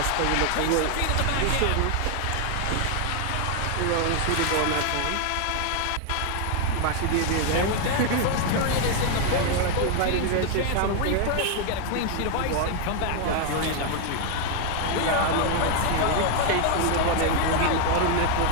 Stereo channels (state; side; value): different; both; correlation 0.00